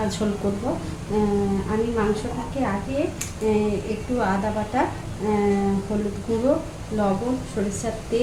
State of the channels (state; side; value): identical; both; correlation 1.00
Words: ঝোল করব। আমি মাংসটাকে আগে একটু আদা বাটা, হলুদ গুঁড়ো, লবণ, সরিষার